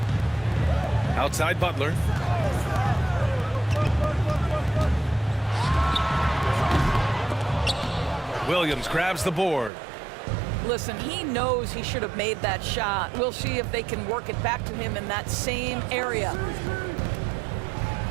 Outside Butler. Williams grabs the board. Listen, he knows he should have made that shot. We'll see if they can work it back to him in that same area.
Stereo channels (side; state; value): left; drops out; at 9.7 s